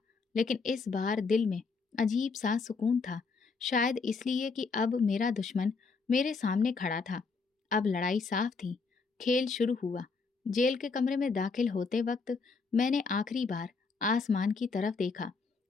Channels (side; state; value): right; quieter; 4.6 dB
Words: लेकिन इस बार दिल में अजीब सा सुकून था। शायद इसलिए कि अब मेरा दुश्मन मेरे सामने खड़ा था। अब लड़ाई साफ थी। खेल शुरू हुआ। जेल के कमरे में दाखिल होते वक्त मैंने आखिरी बार आसमान की तरफ देखा